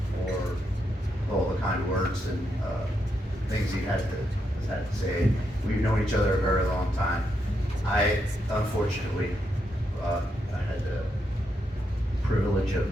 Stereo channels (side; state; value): both; normal; correlation 0.81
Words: for all the kind words and things he had to say. We've known each other a very long time. Unfortunately, I had the privilege of